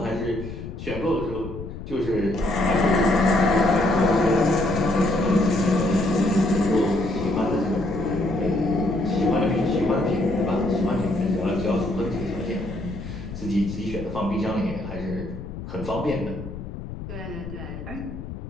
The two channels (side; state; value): left; noise; rumble, 10 dB below the sound